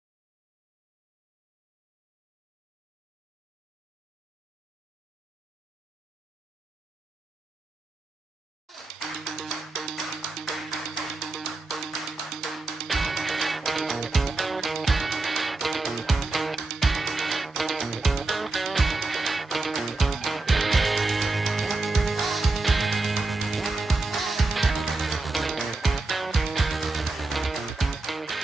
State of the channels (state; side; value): quieter; left; 3.3 dB